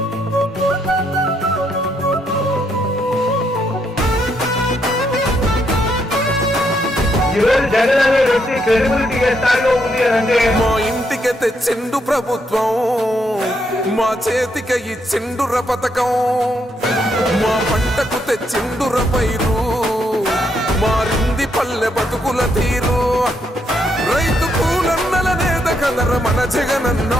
జగన్ అనే వ్యక్తి క్రెడిబిలిటీ ఏ స్థాయిలో ఉంది అంటే మా ఇంటికి తెచ్చిండు ప్రభుత్వం, మా చేతికి ఇచ్చిండుర పథకం. మా పంటకు తెచ్చిండుర పైరు, మారింది పల్లె బతుకుల తీరు. రైతు కూలన్నల నేత కదర మన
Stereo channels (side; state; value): both; normal; correlation 0.76